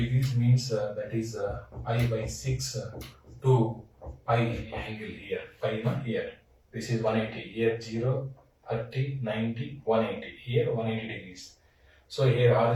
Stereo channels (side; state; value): both; identical; correlation 1.00